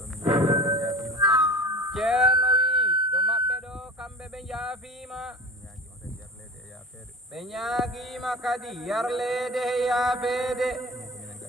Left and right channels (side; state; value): both; normal; correlation 0.35